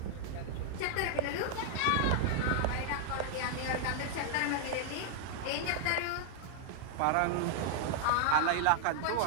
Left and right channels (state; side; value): different; both; correlation 0.00